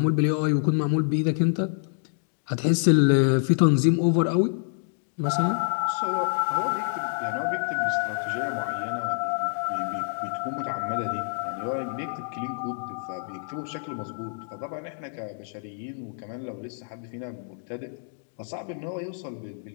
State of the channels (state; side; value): silent; right; digital silence